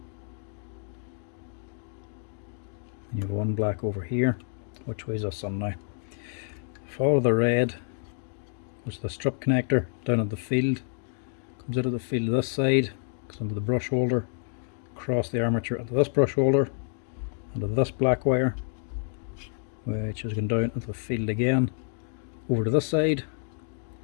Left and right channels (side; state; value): right; silent; 59 dB below the other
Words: And you have one black over here. Which way is this on now? Follow the red, goes to the strip connector down at the field. Comes out of the field this side, goes into the brush holder, across the armature into this brush holder, into this black wire, which is going down into the field again, over to this side,